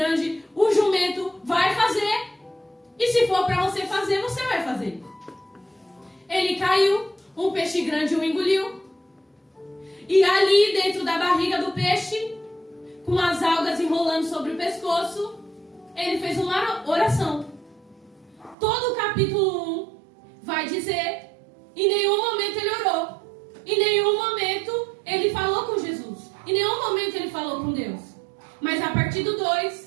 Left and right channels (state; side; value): drops out; left; at 18.6 s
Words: o jumento vai fazer. E se for para você fazer, você vai fazer. Ele caiu, um peixe grande o engoliu. E ali dentro da barriga do peixe, com as algas enrolando sobre o pescoço, ele fez uma oração. Todo o capítulo 1 vai dizer: em nenhum momento ele orou. Em nenhum momento ele falou com Jesus. Em nenhum momento ele falou com Deus. Mas a partir do